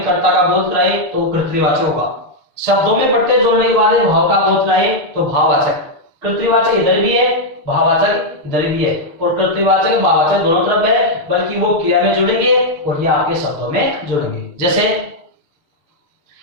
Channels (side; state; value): left; late; 6.5 ms